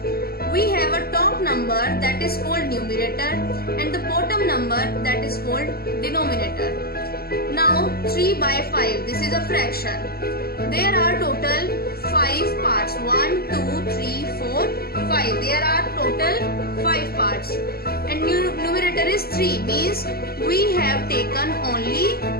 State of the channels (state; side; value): late; right; 0.45 ms